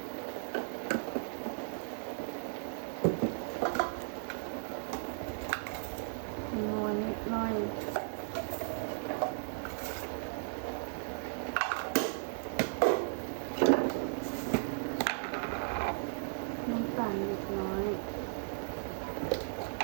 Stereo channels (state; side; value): silent; left; 54 dB below the other